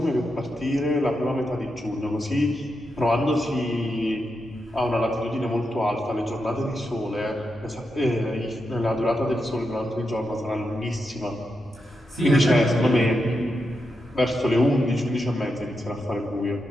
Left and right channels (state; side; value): normal; both; correlation 0.86